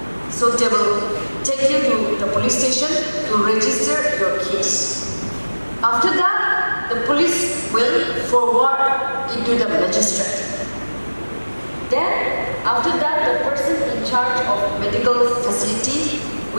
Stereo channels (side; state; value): both; inverted; correlation -1.00